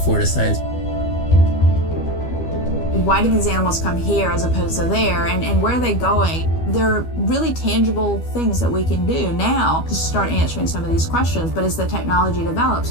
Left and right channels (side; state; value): right; late; 12 ms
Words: to science. Why do these animals come here as opposed to there, and where are they going? There are really tangible things that we can do now to start answering some of these questions, but as the technology develops,